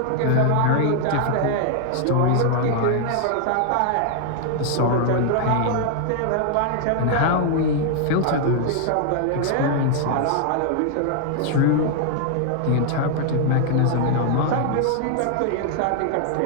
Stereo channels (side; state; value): both; different; correlation 0.00